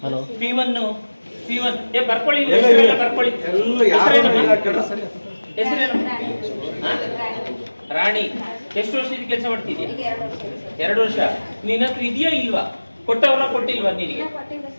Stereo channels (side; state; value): both; inverted; correlation -1.00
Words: Hello P1 ಏ ಬರ್ಕೊಳ್ಳಿ, ಹೆಸರೆಲ್ಲ ಬರ್ಕೊಳ್ಳಿ. ಹೆಸರೇನು? ರಾಣಿ. ಎಷ್ಟು ವರ್ಷದ ಕೆಲಸ ಮಾಡ್ತಿದ್ಯಾ? 2 ವರ್ಷ. ನಿನ್ನ ಹತ್ರ ಇದೆಯಾ ಇಲ್ವಾ? ಕೊಟ್ಟವರ ಕೊಟ್ಟಿಲ್ವಾ ನಿನಗೆ?